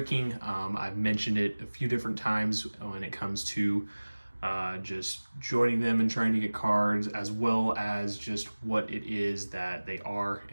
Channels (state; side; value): inverted; both; correlation -1.00